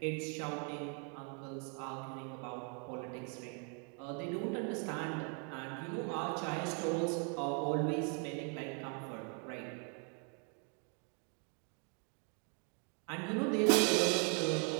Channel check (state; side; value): quieter; left; 39.3 dB